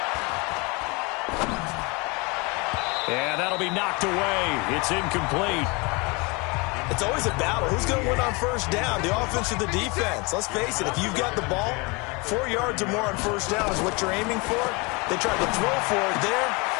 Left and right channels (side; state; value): right; quieter; 28.1 dB